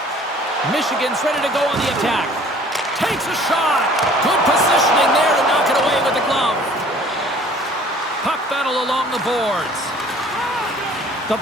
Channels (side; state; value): both; normal; correlation 0.52